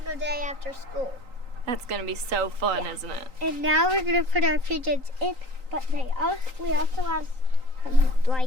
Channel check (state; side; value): late; left; 3.9 ms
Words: day after school. That's gonna be so fun, Yeah. isn't it? And now we're gonna put our pigeons in, but we also have